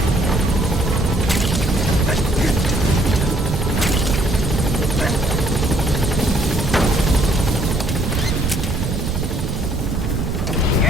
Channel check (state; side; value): noise; right; rumble, 2 dB below the sound